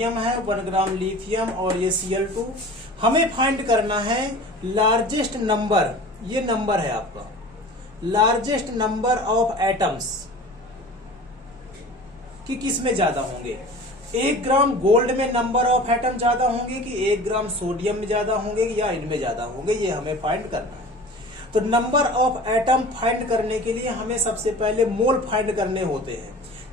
है, 1 ग्राम लिथियम और ये Cl2। हमें फाइंड करना है लार्जेस्ट नंबर, ये नंबर है आपका, लार्जेस्ट नंबर ऑफ एटम्स कि किस में ज्यादा होंगे। 1 ग्राम गोल्ड में नंबर ऑफ एटम ज्यादा होंगे कि 1 ग्राम सोडियम में ज्यादा होंगे या इनमें ज्यादा होंगे, ये हमें फाइंड करना है। तो नंबर ऑफ एटम फाइंड करने के लिए हमें सबसे पहले मोल फाइंड करने होते हैं,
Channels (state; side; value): normal; both; correlation 0.40